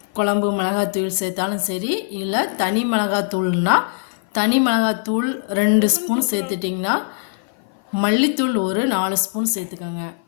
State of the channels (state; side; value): silent; right; 55 dB below the other